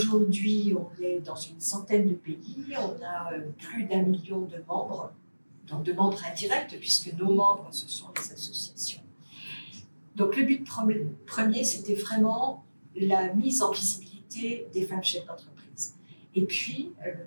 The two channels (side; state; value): both; inverted; correlation -1.00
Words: on est dans une centaine de pays. On a plus d'1 million de membres, donc de membres indirects, puisque nos membres, ce sont les associations. Donc le but premier, c'était vraiment la mise en visibilité des femmes chefs d'entreprise. Et puis, le